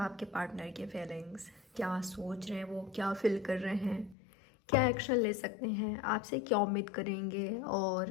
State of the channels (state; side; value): drops out; right; at 4.2 s